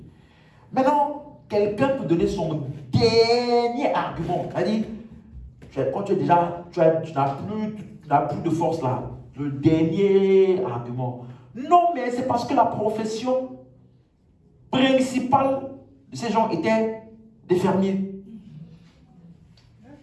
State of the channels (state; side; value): identical; both; correlation 1.00